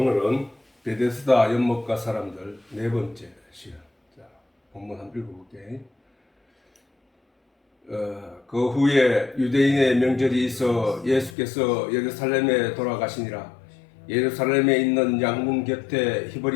베데스다 연못가 사람들 네 번째 시간. 자, 본문 한번 읽어볼게. 그 후에 유대인의 명절이 있어 예수께서 예루살렘에 돌아가시니라. 예루살렘에 있는 양문 곁에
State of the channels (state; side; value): drops out; right; at 11.4 s